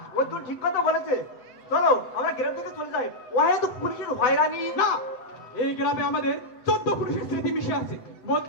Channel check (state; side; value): late; right; 7.9 ms